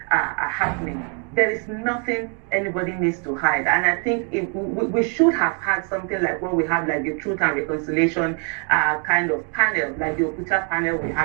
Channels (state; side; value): quieter; left; 39.6 dB